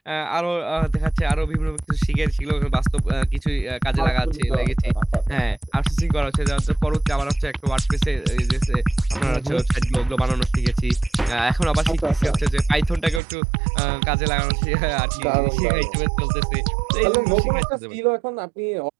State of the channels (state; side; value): drops out; left; at 13.2 s